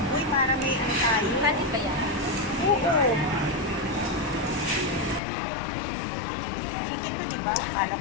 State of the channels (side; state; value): right; drops out; at 5.2 s